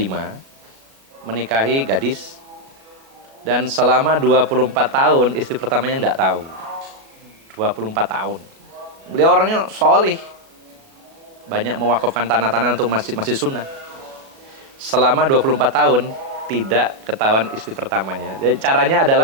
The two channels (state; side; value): late; left; 37 ms